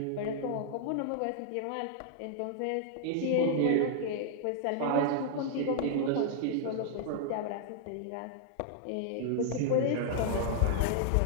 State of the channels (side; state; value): both; different; correlation -0.01